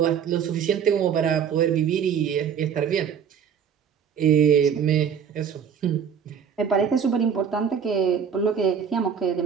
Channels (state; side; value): quieter; left; 7.5 dB